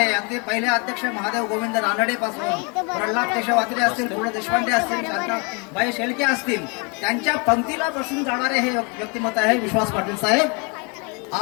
अगदी पहिले अध्यक्ष महादेव गोविंद रानडे पासून प्रल्हाद केशव आत्रे असतील, गो देशपांडे असतील, शांताबाई शेळके असतील, त्यांच्या पंक्तीला बसून जाणारे हे व्यक्तिमत्व आहे विश्वास पाटील साहेब.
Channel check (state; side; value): quieter; right; 32.9 dB